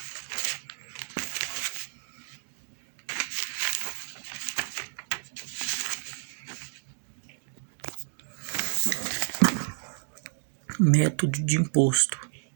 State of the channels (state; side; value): silent; left; digital silence